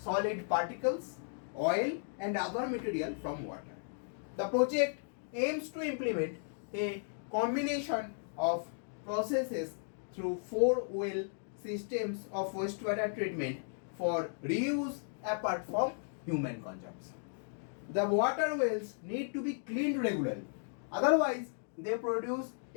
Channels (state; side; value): silent; right; digital silence